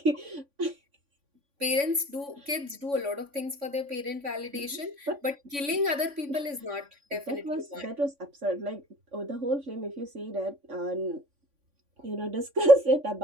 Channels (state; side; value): late; left; 3.5 ms